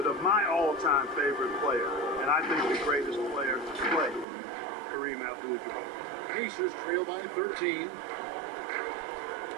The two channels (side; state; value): left; drops out; at 4.2 s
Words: of my all-time favorite player, and I think the greatest player to play, Kareem Abdul-Jabbar. Pacers trail by 13.